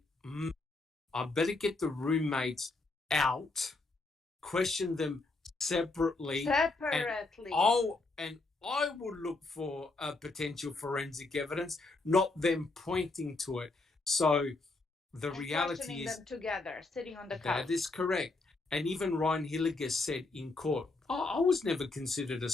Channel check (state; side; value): quieter; right; 3.4 dB